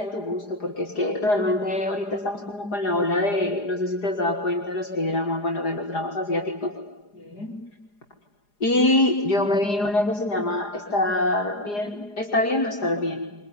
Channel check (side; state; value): right; late; 4.9 ms